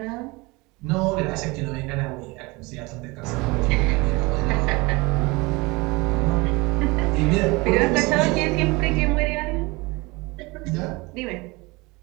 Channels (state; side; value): quieter; left; 24.4 dB